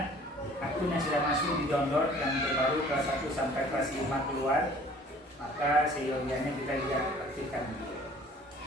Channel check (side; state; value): both; normal; correlation 0.51